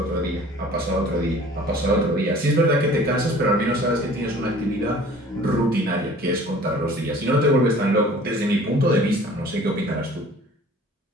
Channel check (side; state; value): both; normal; correlation 0.48